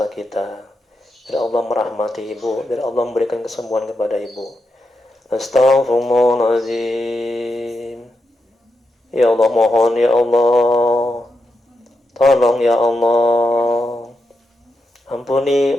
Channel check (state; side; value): normal; both; correlation 0.86